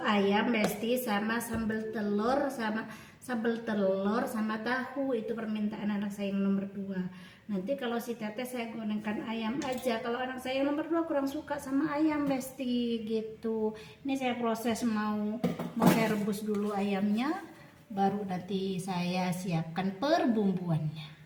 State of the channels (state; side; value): identical; both; correlation 1.00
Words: ayam Besti, sama sambal telur sama tahu. Itu permintaan anak saya yang nomor 2. Nanti kalau si teteh saya gorengkan ayam aja. Kalau anak saya yang nomor 2 kurang suka sama ayam Besti gitu. Ini saya proses mau saya rebus dulu ayamnya, baru nanti saya siapkan perbumbuannya.